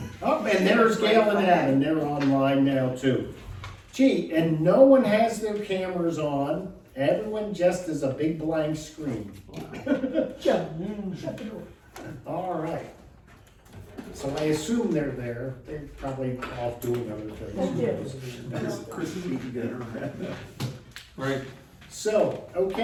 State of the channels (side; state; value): both; identical; correlation 1.00